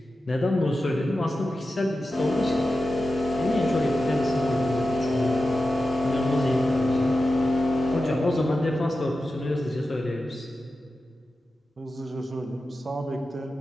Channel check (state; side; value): normal; both; correlation 0.92